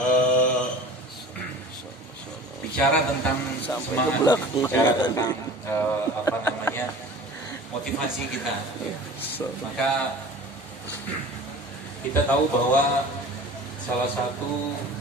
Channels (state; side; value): normal; both; correlation 0.41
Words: Bicara tentang semangat, bicara tentang motivasi kita, maka kita tahu bahwa salah satu